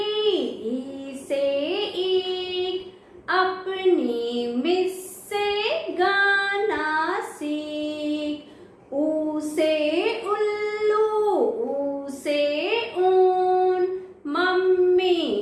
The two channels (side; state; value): both; identical; correlation 1.00